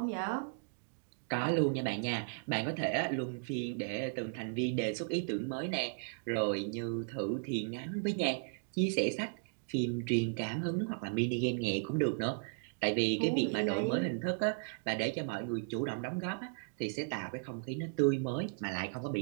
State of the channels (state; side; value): silent; left; digital silence